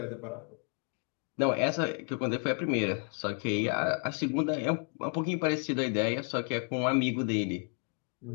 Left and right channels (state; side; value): quieter; right; 38.2 dB